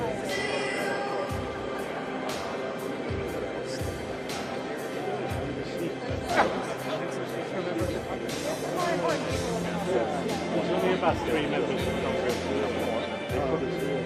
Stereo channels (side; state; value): both; identical; correlation 1.00